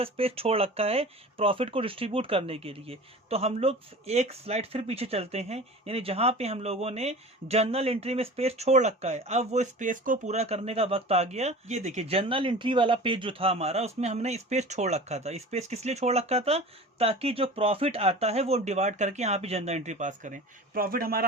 स्पेस छोड़ रखा है प्रॉफिट को डिस्ट्रीब्यूट करने के लिए। तो हम लोग एक स्लाइड फिर पीछे चलते हैं, यानी जहां पे हम लोगों ने जर्नल एंट्री में स्पेस छोड़ रखा है, अब वो स्पेस को पूरा करने का वक्त आ गया। ये देखिए जर्नल एंट्री वाला पेज जो था हमारा, उसमें हमने स्पेस छोड़ रखा था। स्पेस किस लिए छोड़ रखा था? ताकि जो प्रॉफिट आता है वो डिवाइड करके यहाँ पे जर्नल एंट्री पास करें। प्रॉफिट हमारा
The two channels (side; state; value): both; normal; correlation 0.37